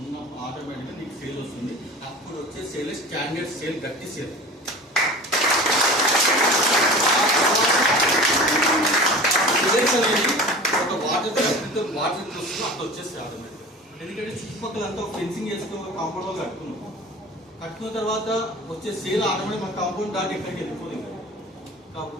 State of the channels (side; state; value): both; normal; correlation 0.37